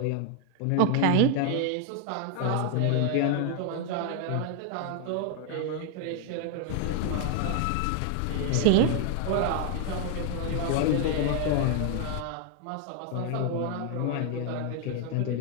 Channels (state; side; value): different; both; correlation 0.00